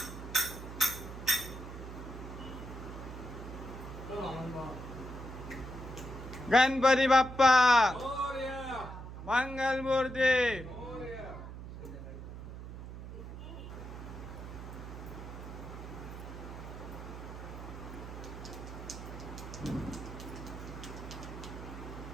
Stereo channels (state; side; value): noise; right; hum, 10 dB below the sound